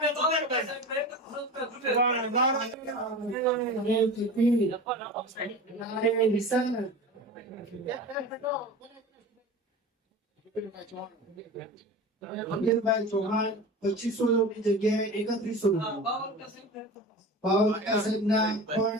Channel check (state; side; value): normal; both; correlation 0.33